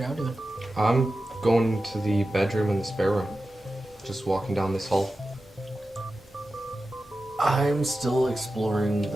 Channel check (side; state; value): left; noise; hum, 27 dB below the sound